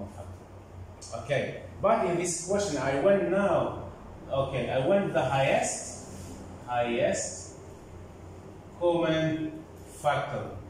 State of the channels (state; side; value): identical; both; correlation 1.00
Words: factor. Okay, but in this question I went now, okay, I went the highest common factor